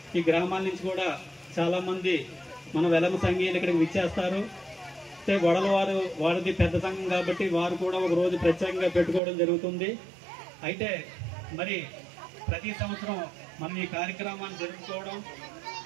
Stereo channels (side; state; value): left; drops out; at 9.2 s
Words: ఈ గ్రామాల నుంచి కూడా చాలామంది మన వెలమ సంఘీయులు ఇక్కడికి విచ్చేస్తారు. అయితే వడల వారిది పెద్ద సంఘం కాబట్టి వారు కూడా ఒక రోజు ప్రత్యేకంగా పెట్టుకోవడం జరుగుతుంది. అయితే మరి ప్రతి సంవత్సరం మనం ఈ కార్యక్రమాన్ని జరుపుకోవడం,